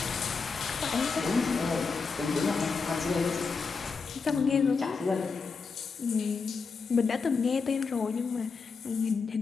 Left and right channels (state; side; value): quieter; right; 5.0 dB